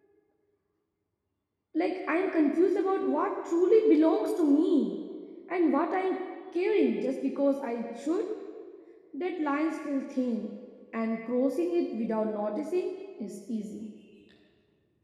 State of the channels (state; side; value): identical; both; correlation 1.00